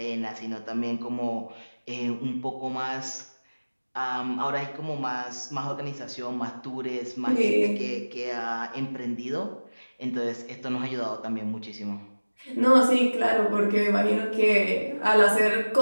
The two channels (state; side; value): inverted; both; correlation -1.00